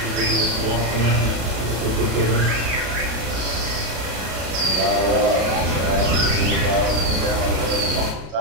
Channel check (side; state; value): left; late; 33 ms